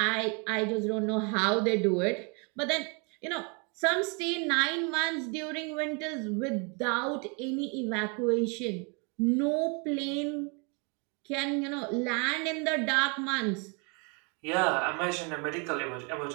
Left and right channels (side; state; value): left; quieter; 34.3 dB